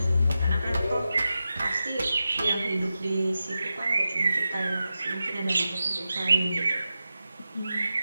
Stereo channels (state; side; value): inverted; both; correlation -0.91